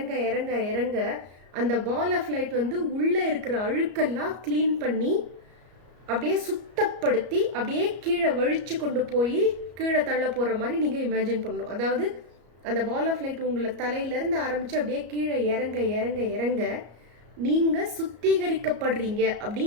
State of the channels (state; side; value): late; left; 34 ms